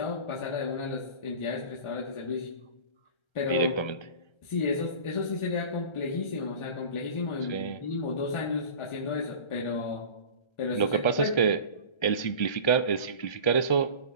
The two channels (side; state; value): right; late; 1.3 ms